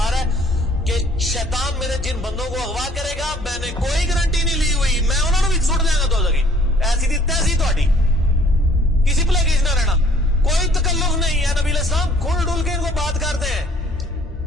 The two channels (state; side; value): normal; both; correlation 0.58